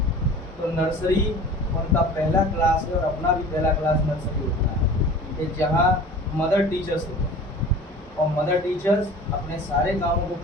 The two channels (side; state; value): both; normal; correlation 0.42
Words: तो नर्सरी उनका पहला क्लास है और अपना भी पहला क्लास नर्सरी होता है कि जहाँ मदर टीचर्स होते हैं और मदर टीचर्स अपने सारे कामों को